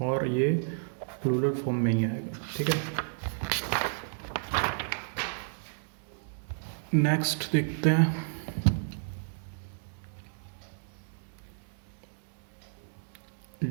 और ये प्लूरल फॉर्म में ही आएगा, ठीक है। नेक्स्ट देखते हैं,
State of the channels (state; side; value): silent; left; digital silence